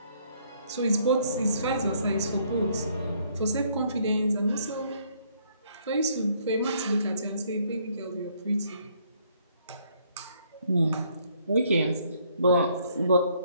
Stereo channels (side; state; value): both; inverted; correlation -0.66